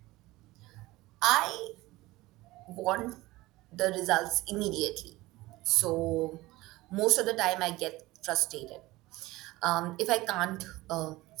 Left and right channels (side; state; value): left; quieter; 19.2 dB